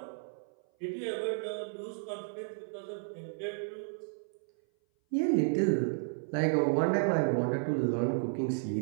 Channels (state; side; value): silent; left; 56 dB below the other